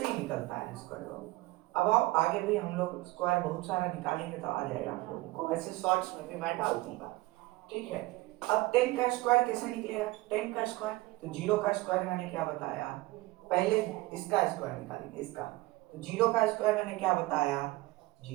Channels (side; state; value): left; quieter; 20.2 dB